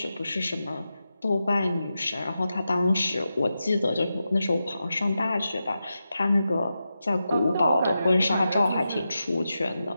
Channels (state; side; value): inverted; both; correlation -0.90